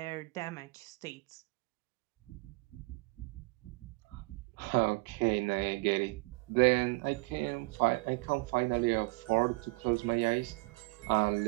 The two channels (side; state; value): left; quieter; 27.3 dB